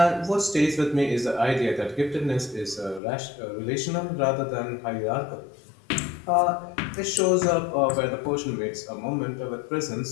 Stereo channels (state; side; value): drops out; right; at 3.0 s